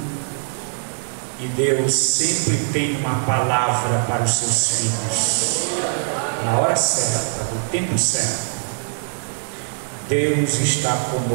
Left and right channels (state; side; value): silent; left; digital silence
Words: E Deus sempre tem uma palavra para os seus filhos, na hora certa, no tempo certo. Deus está